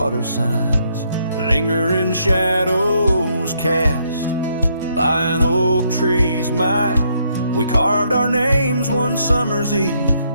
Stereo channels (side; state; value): both; inverted; correlation -0.73